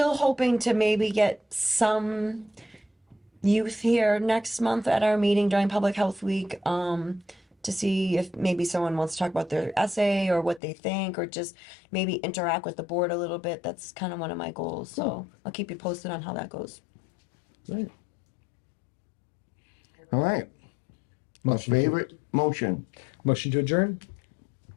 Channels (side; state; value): right; drops out; at 10.6 s